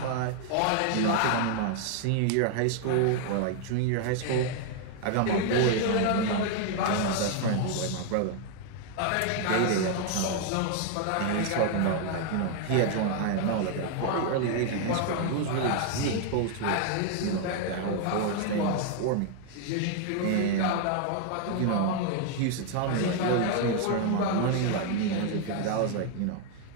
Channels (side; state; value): both; different; correlation 0.00